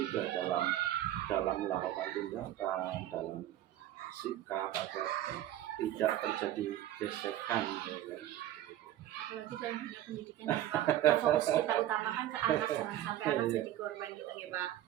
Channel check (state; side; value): quieter; left; 13.1 dB